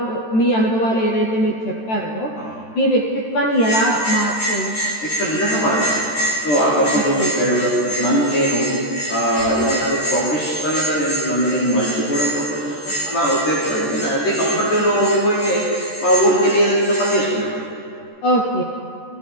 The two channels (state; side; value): late; right; 13 ms